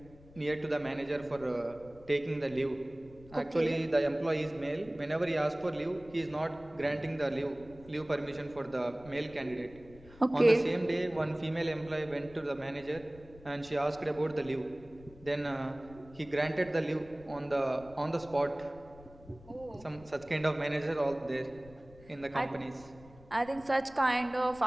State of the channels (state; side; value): noise; left; rumble, 21 dB below the sound